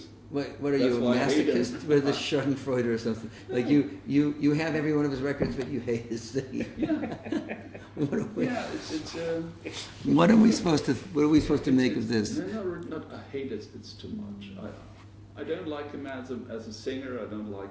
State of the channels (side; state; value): both; identical; correlation 1.00